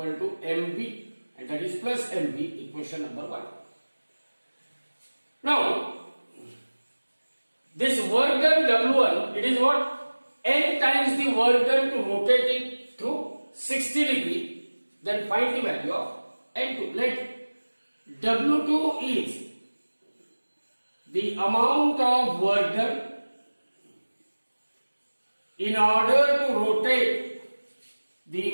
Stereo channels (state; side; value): inverted; both; correlation -1.00